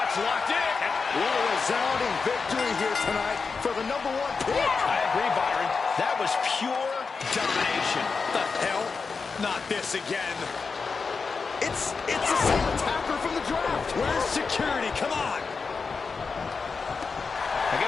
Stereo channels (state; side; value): quieter; right; 4.8 dB